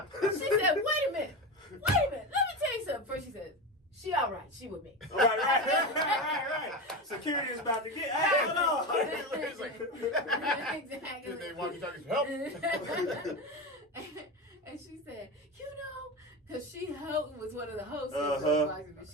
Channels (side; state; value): both; normal; correlation 0.21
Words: wait a minute. Let me tell you something. First she said, she all right. She with me. Right. Security is about to get. Hey, hold on. Exactly. Did they walkie-talkies help? And she said, you know, because she was one of the hosts of the boxing, but